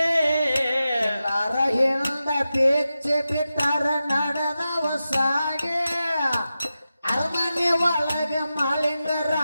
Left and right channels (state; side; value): inverted; both; correlation -0.92